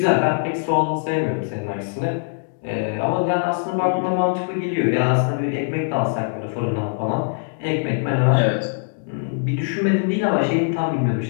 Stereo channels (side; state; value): right; silent; 62 dB below the other